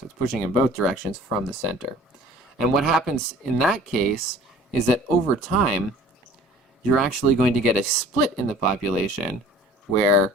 it's pushing in both directions from the center. And what happens in that case is that over time, you're actually going to get a split in the population where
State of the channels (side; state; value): both; normal; correlation 0.48